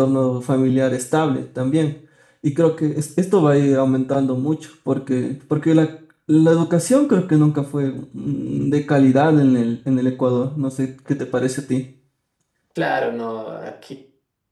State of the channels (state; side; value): identical; both; correlation 1.00